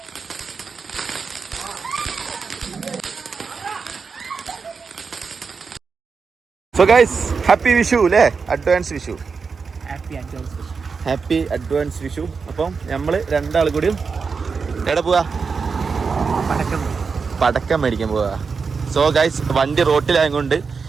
so guys happy Vishu അല്ലേ, advance Vishu. Happy advance Vishu. അപ്പം നമ്മള് രണ്ടാൾ കൂടിയും എവിടെ പോവാ? പടക്കം മേടിക്കാൻ പോവാ. സോ ഗൈസ് വണ്ടി റോട്ടിലായതുകൊണ്ട്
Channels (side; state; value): left; quieter; 5.2 dB